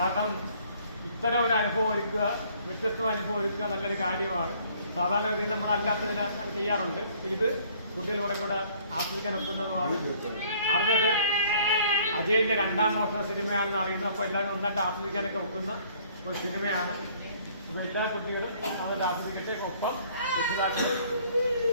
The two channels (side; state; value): both; inverted; correlation -0.58